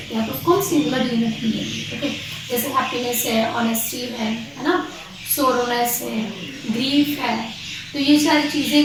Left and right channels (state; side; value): identical; both; correlation 1.00